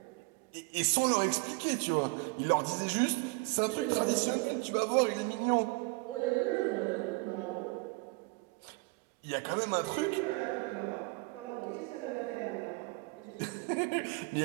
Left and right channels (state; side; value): quieter; left; 26.5 dB